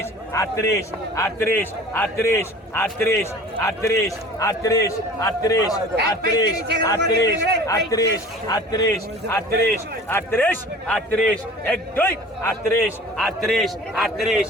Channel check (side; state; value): both; normal; correlation 0.44